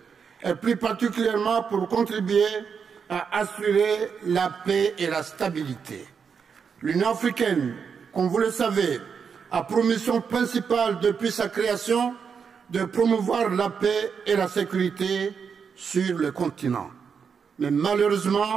et plus particulièrement pour contribuer à assurer la paix et la stabilité. L'Union africaine, comme vous le savez, a pour mission principale depuis sa création de promouvoir la paix et la sécurité sur le continent. Mais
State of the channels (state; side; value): quieter; left; 6.3 dB